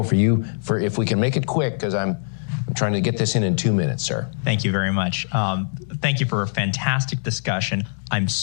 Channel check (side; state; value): right; silent; 64 dB below the other